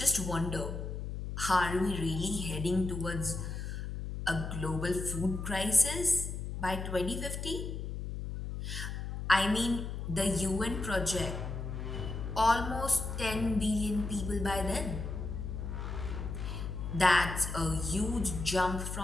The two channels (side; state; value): left; noise; hum, 5 dB below the sound